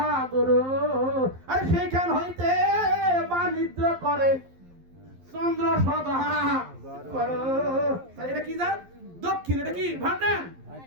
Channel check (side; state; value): left; late; 11 ms